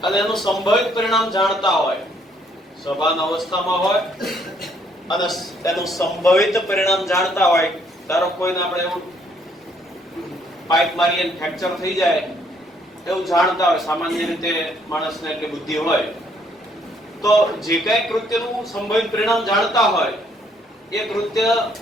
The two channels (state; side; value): normal; both; correlation 0.67